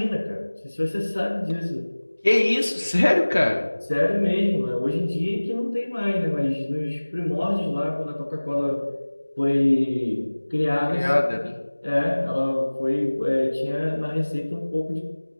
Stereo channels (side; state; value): both; inverted; correlation -1.00